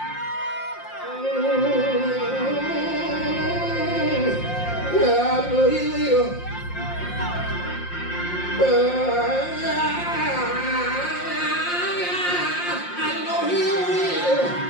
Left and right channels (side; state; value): right; late; 5.7 ms